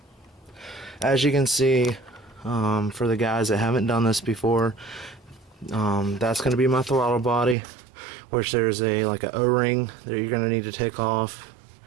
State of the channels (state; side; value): drops out; left; at 7.6 s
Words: As you can see, for the guys that haven't done this before, that's going to be my throttle body, which there's a O-ring that you're going to need to take off.